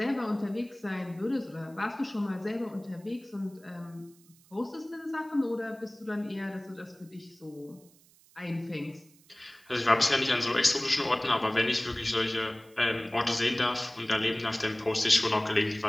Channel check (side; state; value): right; noise; hiss, 28 dB below the sound